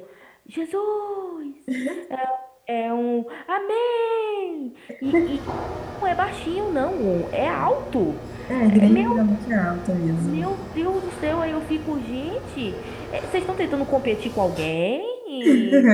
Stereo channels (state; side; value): identical; both; correlation 1.00